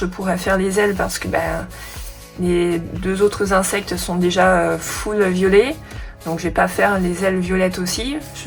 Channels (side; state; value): both; identical; correlation 1.00